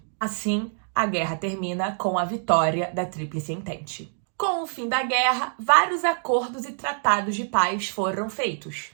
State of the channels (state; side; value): silent; left; digital silence